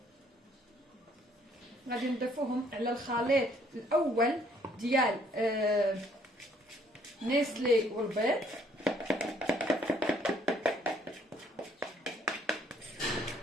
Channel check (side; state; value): both; normal; correlation 0.64